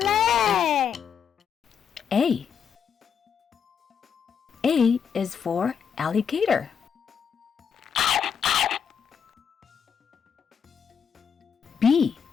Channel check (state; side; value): quieter; right; 7.2 dB